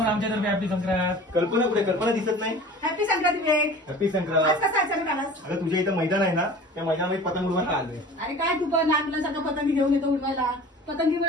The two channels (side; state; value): both; normal; correlation 0.41